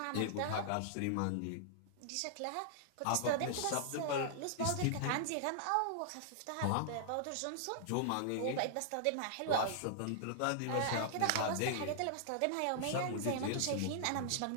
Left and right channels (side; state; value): both; different; correlation -0.01